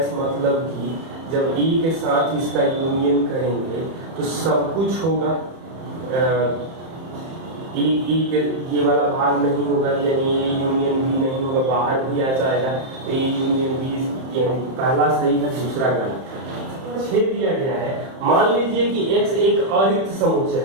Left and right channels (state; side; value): late; left; 31 ms